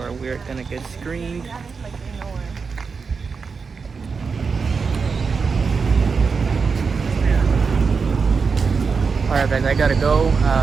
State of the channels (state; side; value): quieter; left; 5.2 dB